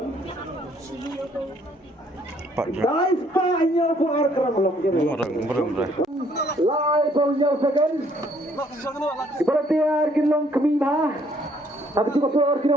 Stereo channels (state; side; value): normal; both; correlation 0.64